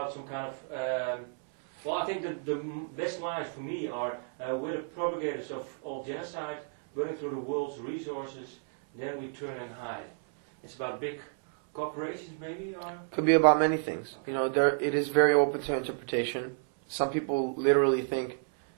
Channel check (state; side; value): silent; left; 57 dB below the other